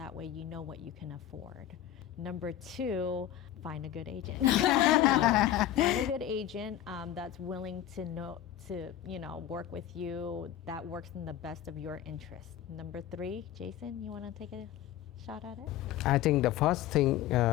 way you know what you can afford. Number two, find a good agent. Find a good agent that's willing to work with you, that works in the best of your interest. Number three, Jason, you want to take a shot at it? I think the first thing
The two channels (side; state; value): right; quieter; 11.7 dB